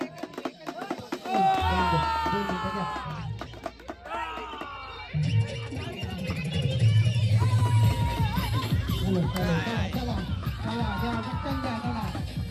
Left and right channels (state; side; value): identical; both; correlation 1.00